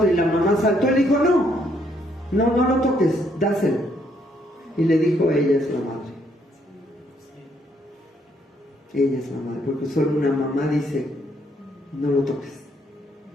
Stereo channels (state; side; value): normal; both; correlation 0.71